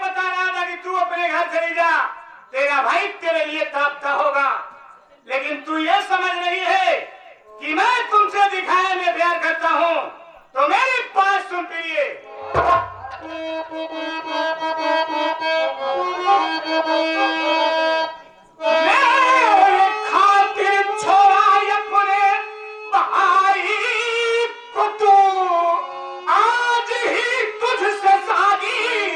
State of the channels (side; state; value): both; identical; correlation 1.00